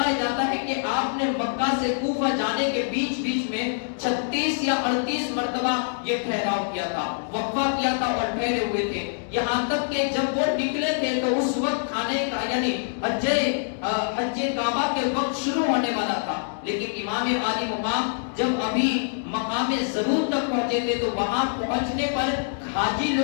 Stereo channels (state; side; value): silent; right; digital silence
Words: جاتا ہے کہ آپ نے مکہ سے کوفہ جانے کے بیچ میں 36 یا 38 مرتبہ یہ ٹھہراؤ کیا تھا، وقفہ کیا تھا اور ٹھہرے ہوئے تھے، یہاں تک کہ جب وہ نکلے تھے تو اس وقت کھانے کا یعنی حج کعبہ کے وقت شروع ہونے والا تھا، لیکن امام عالی مقام جب ابھی مقام ضرور تک پہنچے تھے تو وہاں پہنچنے پر حاجی